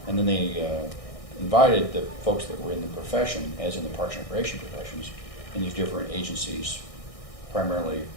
then they invited the folks that were in the profession, as in the Parks and Recreation professions, in these different agencies, primarily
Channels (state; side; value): late; right; 1.6 ms